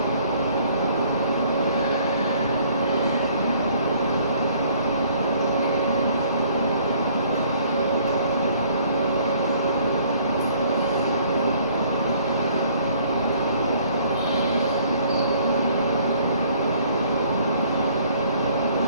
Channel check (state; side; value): inverted; both; correlation -0.59